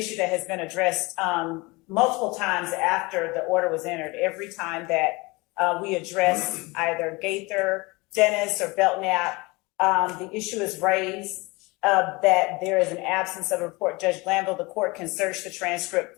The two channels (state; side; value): quieter; right; 24.6 dB